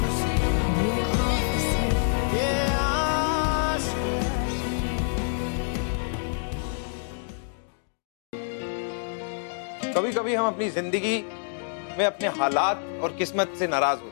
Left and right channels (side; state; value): right; silent; digital silence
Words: सी ये आशिकी। कभी कभी हम अपनी जिंदगी में अपने हालात और किस्मत से नाराज